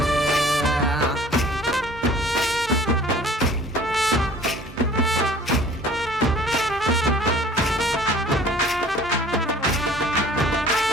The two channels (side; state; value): both; normal; correlation 0.50